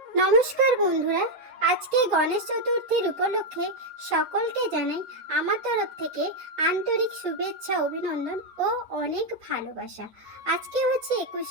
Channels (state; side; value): late; left; 9.2 ms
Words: নমস্কার বন্ধুরা, আজকে গণেশ চতুর্থীর উপলক্ষে সকলকে জানাই আমার তরফ থেকে আন্তরিক শুভেচ্ছা, অভিনন্দন ও অনেক ভালোবাসা। আজকে হচ্ছে